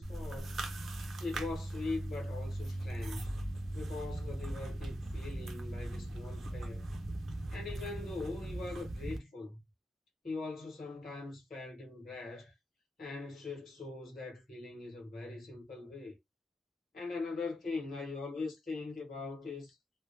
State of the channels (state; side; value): normal; both; correlation 0.87